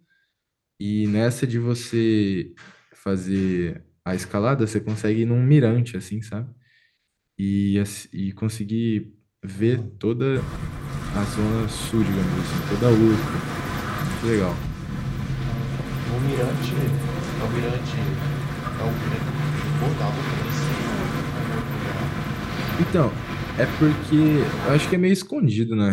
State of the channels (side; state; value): both; identical; correlation 1.00